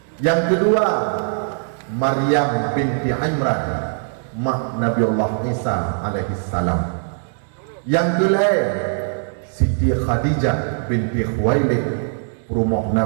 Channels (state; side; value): silent; left; 63 dB below the other